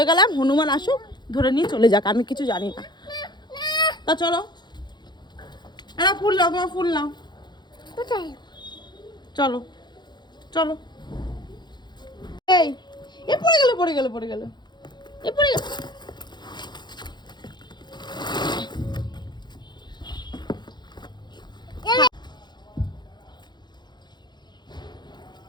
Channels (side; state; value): right; late; 0.21 ms